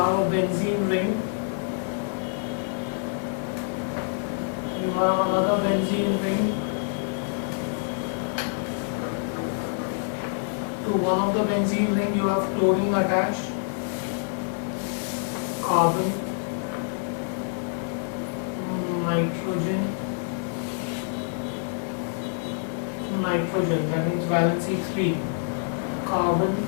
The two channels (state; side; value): silent; right; digital silence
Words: a benzene ring. You have another benzene ring. To one of the benzene ring you have chlorine attached. Carbon, nitrogen, that means valency 3, carbon,